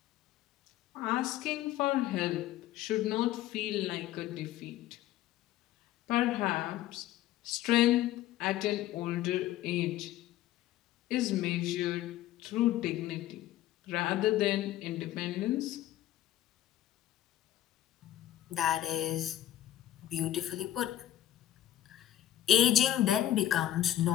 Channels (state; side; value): quieter; right; 13.1 dB